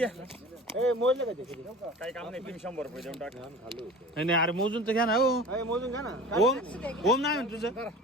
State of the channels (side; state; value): both; normal; correlation 0.39